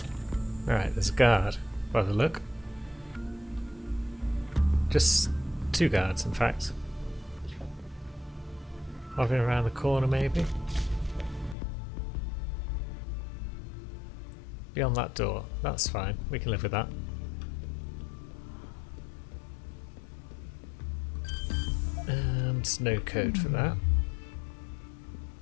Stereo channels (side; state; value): right; drops out; at 11.6 s